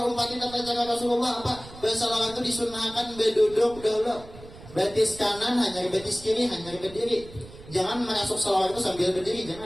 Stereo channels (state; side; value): noise; right; rumble, 18 dB below the sound